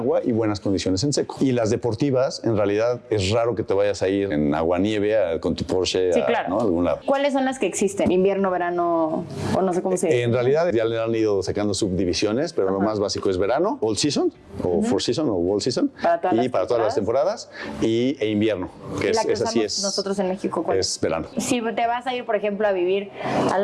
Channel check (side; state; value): both; identical; correlation 1.00